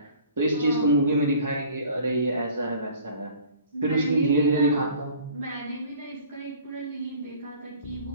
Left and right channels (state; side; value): inverted; both; correlation -0.49